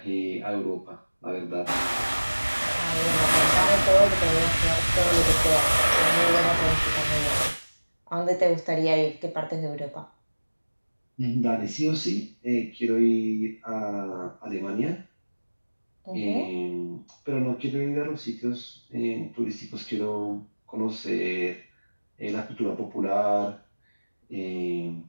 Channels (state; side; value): inverted; both; correlation -1.00